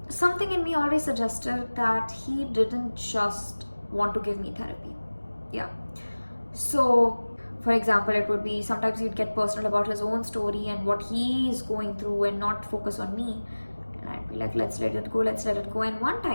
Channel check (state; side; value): inverted; both; correlation -1.00